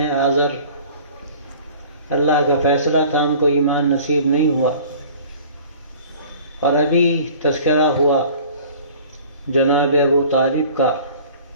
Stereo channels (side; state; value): both; inverted; correlation -0.47